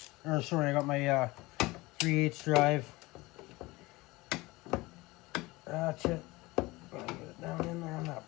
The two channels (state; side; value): quieter; right; 21.5 dB